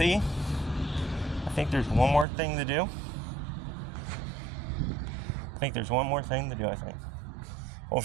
I think there's one more thing to do. I think.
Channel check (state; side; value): drops out; left; at 2.2 s